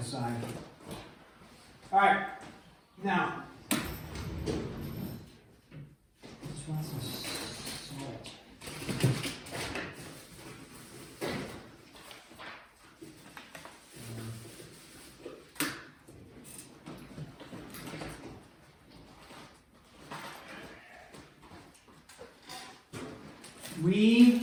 size. All right. Now, let's want some salt.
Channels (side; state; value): both; identical; correlation 1.00